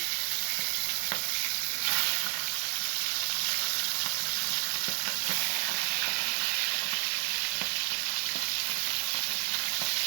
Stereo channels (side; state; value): left; silent; 57 dB below the other